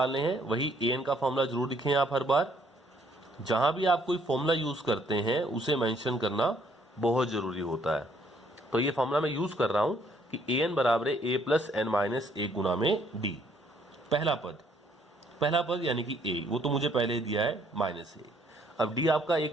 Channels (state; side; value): normal; both; correlation 0.66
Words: हैं, वही an का फॉर्मूला जरूर लिखें आप हर बार। जहां भी आप कोई फॉर्मूला यूज करते हैं उसे मेंशन करना बहुत जरूरी होता है। तो ये फॉर्मूला मैं यूज कर रहा हूं कि an बराबर है a प्लस n-1 गुना में d। पहला पद यानी कि a, वो तो मुझे पहले ही दिया है -1। अब d आपका